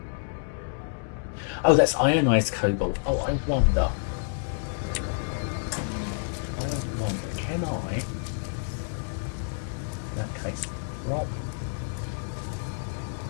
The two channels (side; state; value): right; silent; digital silence